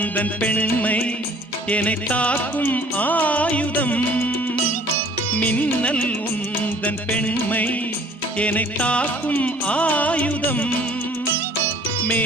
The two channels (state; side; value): normal; both; correlation 0.54